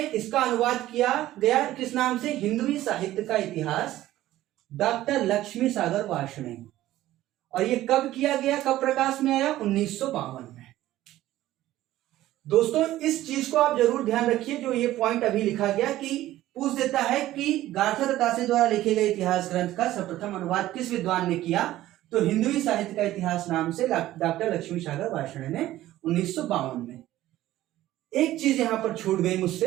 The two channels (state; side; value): quieter; left; 14.8 dB